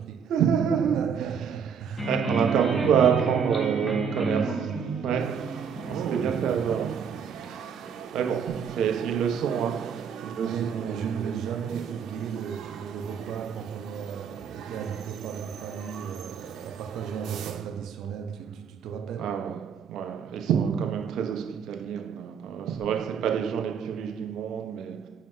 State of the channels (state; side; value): quieter; left; 6.9 dB